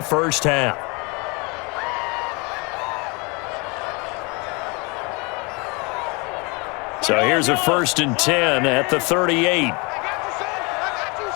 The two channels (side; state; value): right; quieter; 29.4 dB